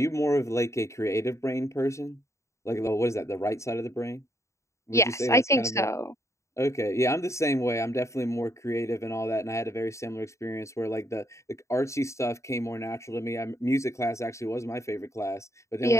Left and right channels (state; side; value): late; right; 0.14 ms